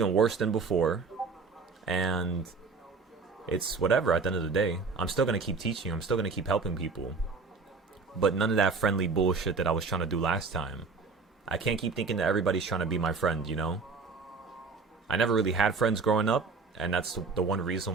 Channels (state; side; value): quieter; left; 4.6 dB